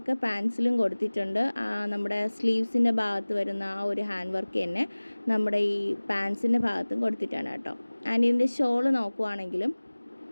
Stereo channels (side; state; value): both; inverted; correlation -1.00